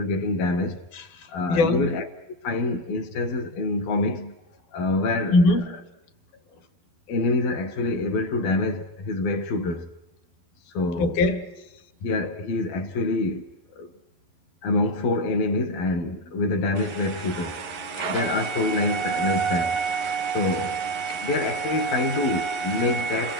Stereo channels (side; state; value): right; late; 11 ms